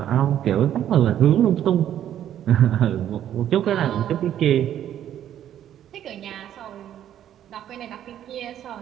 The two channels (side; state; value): left; quieter; 10.8 dB